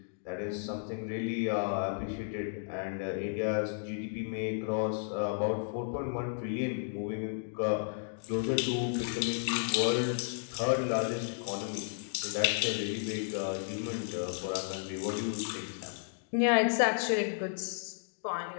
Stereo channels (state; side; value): silent; right; digital silence